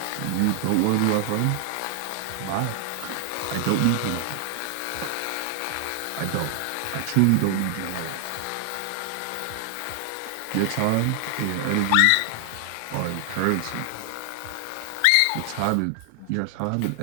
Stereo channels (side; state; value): both; different; correlation 0.00